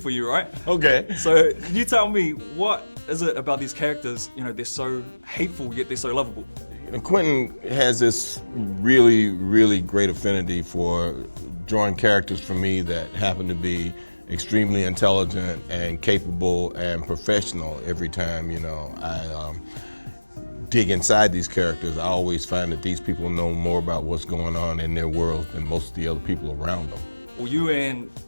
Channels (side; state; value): both; inverted; correlation -1.00